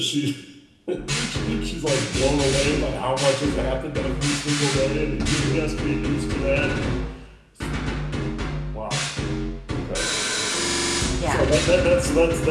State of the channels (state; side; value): identical; both; correlation 1.00